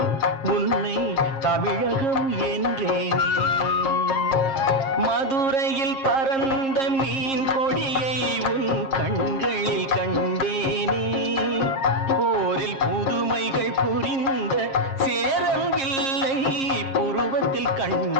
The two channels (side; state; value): right; late; 7.5 ms